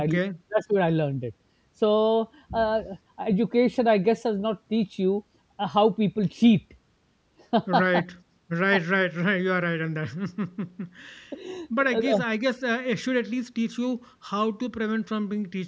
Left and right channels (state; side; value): identical; both; correlation 1.00